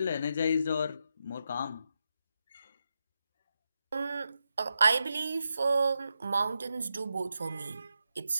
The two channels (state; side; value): inverted; both; correlation -0.86